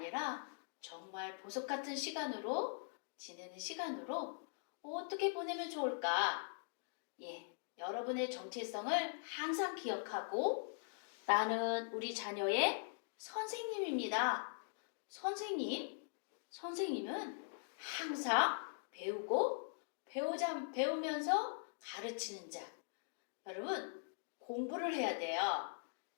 정말 보석 같은 시간으로 지내는 시간으로 어떻게 보내면 좋을까? 여러분의 정체성을 항상 기억하고 나는 우리 자녀의 선생님입니다. 선생님은 항상 배우고 배우면서 가르치는 자. 여러분, 공부를 해야 돼요.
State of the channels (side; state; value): right; silent; digital silence